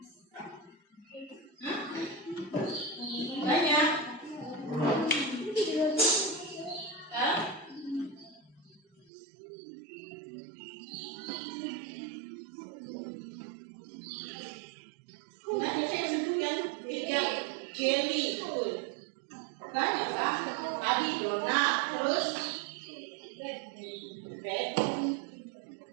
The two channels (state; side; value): drops out; left; at 9.1 s